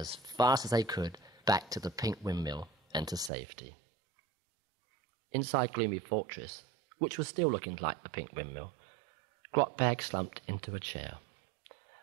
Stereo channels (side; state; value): left; drops out; at 3.3 s